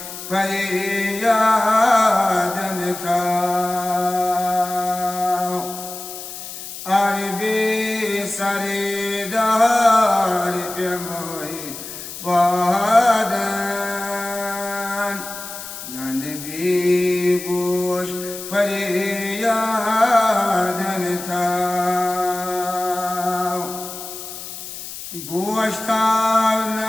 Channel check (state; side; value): noise; left; hiss, 10 dB below the sound